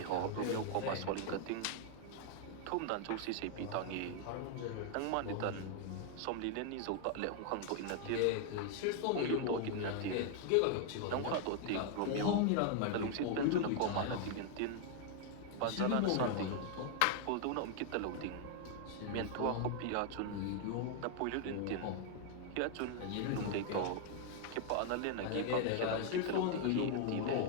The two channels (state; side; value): different; both; correlation 0.00